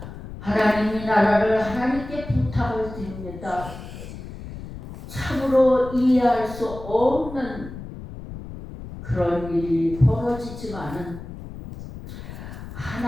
하나님이 나라를 하나님께 부탁을 드립니다. 참으로 이해할 수 없는 그런 일이 벌어지지만은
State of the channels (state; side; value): noise; left; rumble, 12 dB below the sound